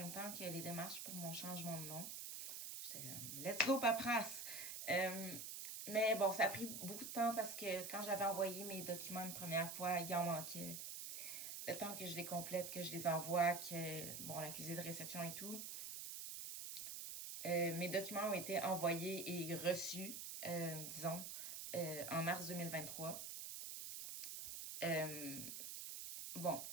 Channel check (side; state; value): right; noise; hiss, 6 dB below the sound